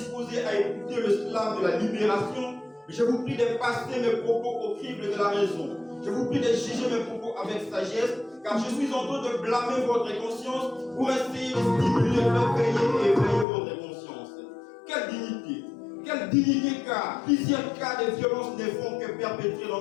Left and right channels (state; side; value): drops out; right; at 13.5 s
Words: à écouter le slam de la libération, mais je vous prie de passer mes propos au crible de la raison. Je vous prie de juger mes propos avec sagesse, car je suis en train de blâmer votre conscience pour essayer de stimuler, réveiller et éveiller votre conscience. Quelle dignité car plusieurs cas de violence ne font que perpétrer